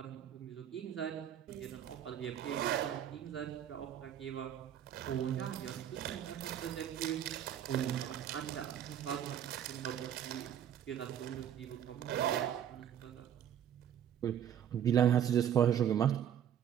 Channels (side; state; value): left; quieter; 9.7 dB